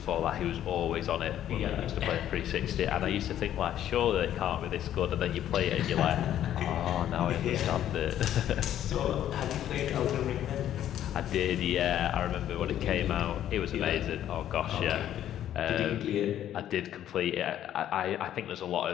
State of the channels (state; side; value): quieter; right; 11.3 dB